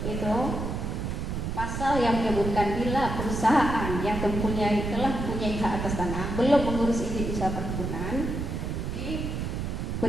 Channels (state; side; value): noise; right; rumble, 3 dB below the sound